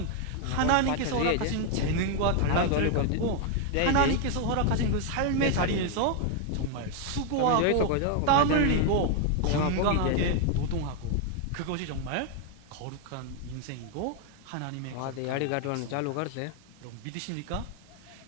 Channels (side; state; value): both; different; correlation 0.00